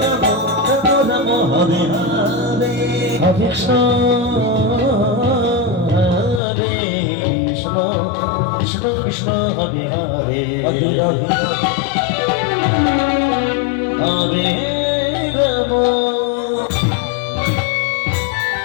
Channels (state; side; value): drops out; right; at 6.4 s